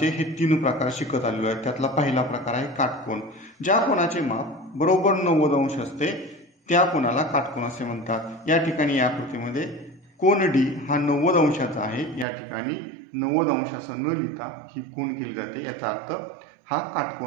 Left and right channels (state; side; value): drops out; left; at 12.2 s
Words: हे 3 प्रकार शिकत आलेलो आहे। त्यातला पहिला प्रकार आहे काटकोन। ज्या कोनाचे माप बरोबर 90 अंश असते त्या कोनाला काटकोन असे म्हणतात। या ठिकाणी या आकृतीमध्ये कोन डी हा 90 अंशाचा आहे। या ठिकाणी 90 अंश असं न लिहिता ही खूण केली जाते, याचा अर्थ हा